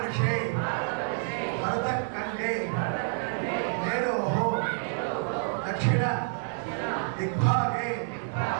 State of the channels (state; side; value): silent; left; digital silence